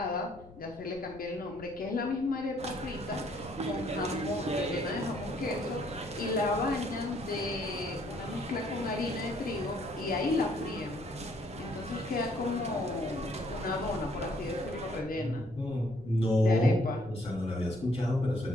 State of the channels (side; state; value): left; noise; rumble, 20 dB below the sound